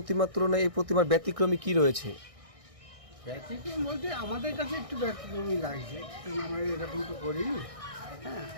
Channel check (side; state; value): left; late; 1.6 ms